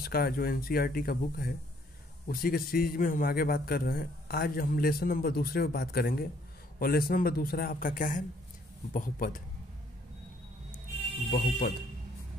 का जो एनसीईआरटी का बुक है उसी के सीरीज में हम आगे बात कर रहे हैं। आज हम लेसन नंबर दूसरे पे बात करेंगे और लेसन नंबर दूसरा आपका क्या है? बहुपद। बहुपद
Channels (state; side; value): normal; both; correlation 0.64